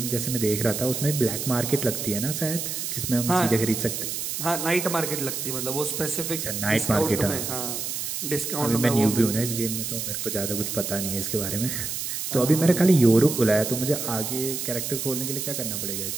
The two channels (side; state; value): right; noise; hiss, 4 dB below the sound